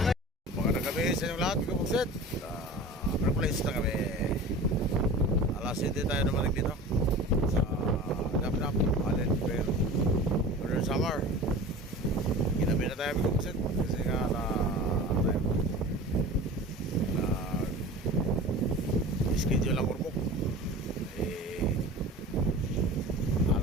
Magandang gabi sa inyong lahat, mga buksit. Place na kami. Alas 7 tayo naman dito sa Dap-Dap, Allen Fair, Northern Samar. Ginabi na tayo, mga buksit, kasi nga schedule ang kurmok.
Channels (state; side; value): normal; both; correlation 0.36